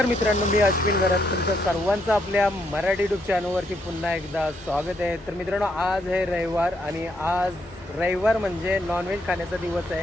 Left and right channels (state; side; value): normal; both; correlation 0.75